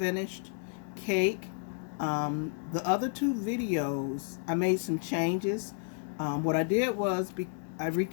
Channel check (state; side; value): silent; right; digital silence